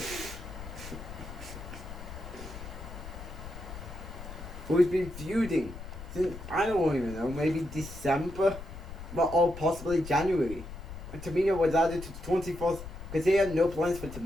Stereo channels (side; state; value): left; noise; rumble, 11 dB below the sound